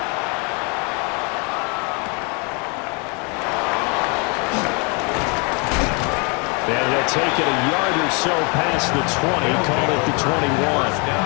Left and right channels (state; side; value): quieter; right; 33.1 dB